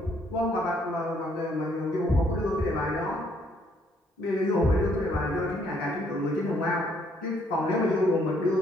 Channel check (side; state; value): both; normal; correlation 0.67